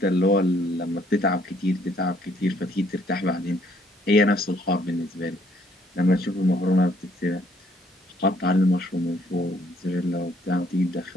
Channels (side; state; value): both; normal; correlation 0.66